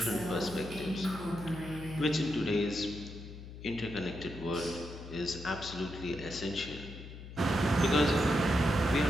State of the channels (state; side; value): noise; left; hum, 13 dB below the sound